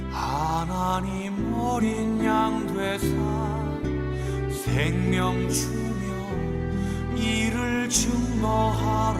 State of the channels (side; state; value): both; identical; correlation 1.00